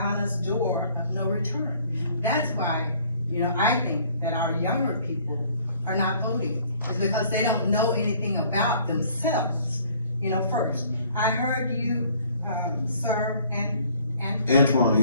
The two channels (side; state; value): both; inverted; correlation -0.58